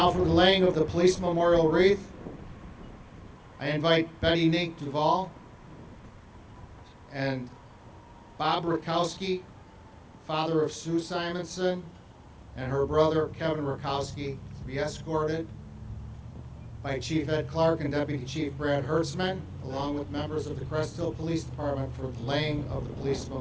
for the laying of the police memorial wreath, I invite Betty Nink Duval and Bob Rakowski, father of Sue Simonson, and her brother Kevin Rakowski, to be escorted by Chief Ed Clark and Deputy Chief Brad Hertzman, along with members of the Crest Hill Police Department for the laying of the police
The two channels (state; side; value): identical; both; correlation 1.00